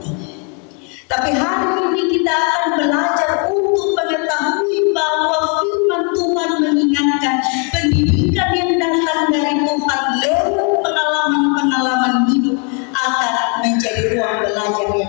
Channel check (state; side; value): quieter; right; 37.3 dB